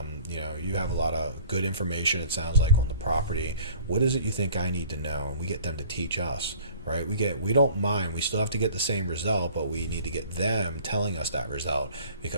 you have a lot of good information, it sounds like, on the property. What is it you think I need to know? And we get them to teach us. Right? We don't mind. We still have to get the same result, but we need to get them telling us that result,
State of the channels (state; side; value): inverted; both; correlation -0.48